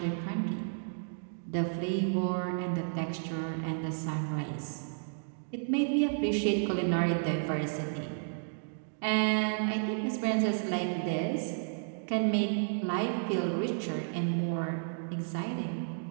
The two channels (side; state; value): left; silent; digital silence